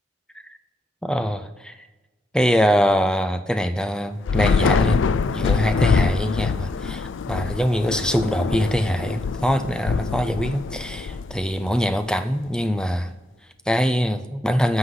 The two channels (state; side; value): normal; both; correlation 0.80